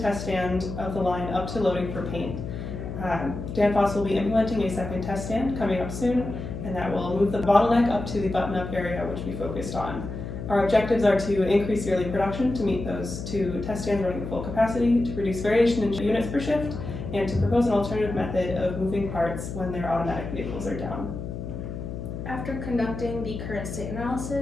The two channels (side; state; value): left; noise; hum, 7 dB below the sound